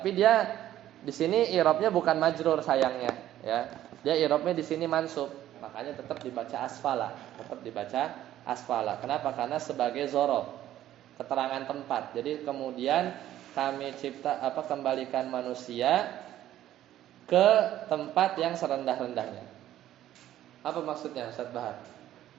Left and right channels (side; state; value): left; quieter; 12.7 dB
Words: dia di sini i'rabnya bukan majrur sayangnya ya. Dia i'rabnya di sini mansub. Makanya tetap dibaca asfala. Kenapa? Karena sebagai zorof, keterangan tempat. Jadi kemudian kami kembalikan manusia ke tempat yang serendah-rendahnya. Apa maksudnya Ustaz Bahar?